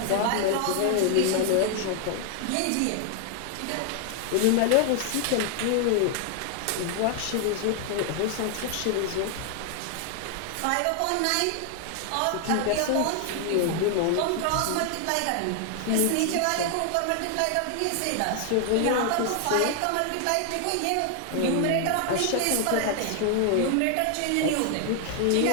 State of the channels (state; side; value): different; both; correlation 0.00